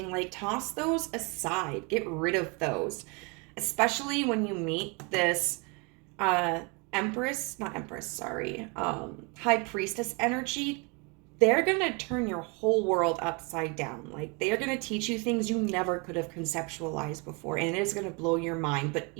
like, toss those aside, get rid of those. Especially when you meet this high priestess energy. They're going to turn your whole world upside down. Like, they're going to teach you things you never could have conceptualized before, and it is going to blow your mind, but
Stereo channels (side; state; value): left; quieter; 30.9 dB